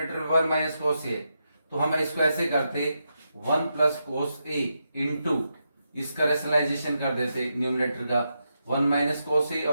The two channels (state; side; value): inverted; both; correlation -0.85